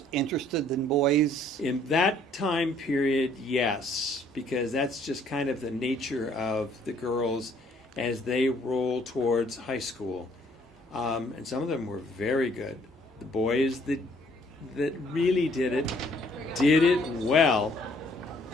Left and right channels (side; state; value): both; normal; correlation 0.62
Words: interested than boys? In that time period, yes, because that's just kind of the nature of the girls as they roll towards high school. And some of them were very good. The boys that really did it well.